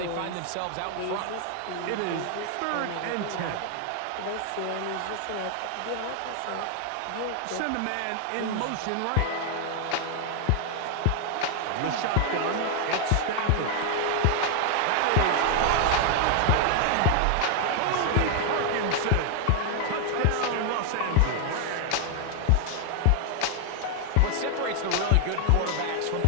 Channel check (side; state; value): both; different; correlation 0.00